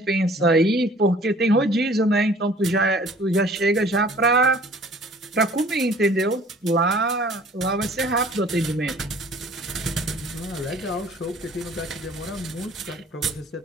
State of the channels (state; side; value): normal; both; correlation 0.52